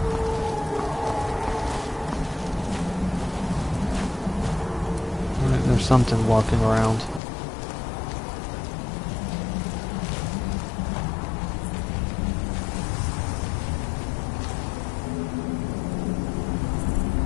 Alright, there's something walking around.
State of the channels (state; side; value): drops out; right; at 7.2 s